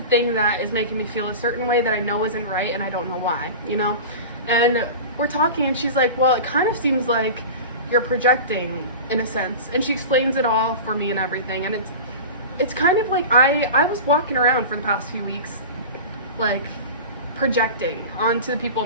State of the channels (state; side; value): inverted; both; correlation -0.31